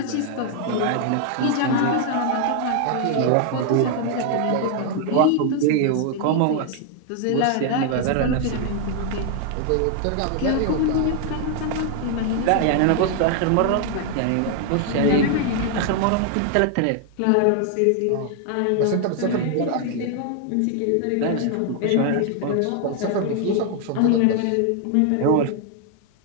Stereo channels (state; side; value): different; both; correlation 0.00